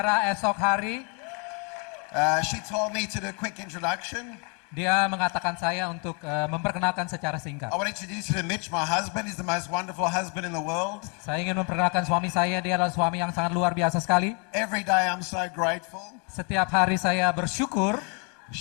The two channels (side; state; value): right; quieter; 35.3 dB